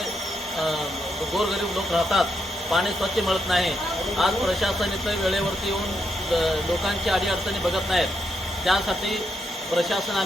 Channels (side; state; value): both; normal; correlation 0.81